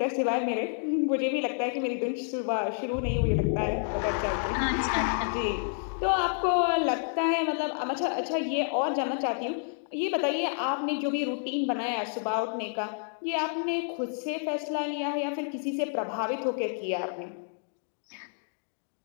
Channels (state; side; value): silent; right; 58 dB below the other